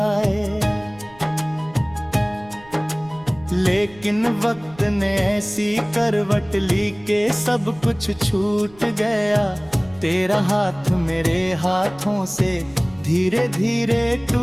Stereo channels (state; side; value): noise; right; rumble, 24 dB below the sound